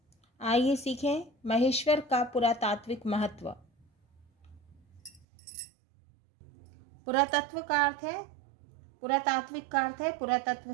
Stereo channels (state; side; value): drops out; left; at 5.2 s